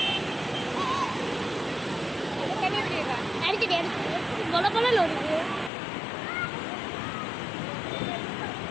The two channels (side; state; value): right; drops out; at 5.7 s